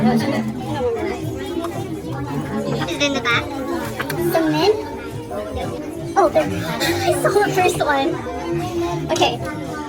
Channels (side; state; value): both; identical; correlation 1.00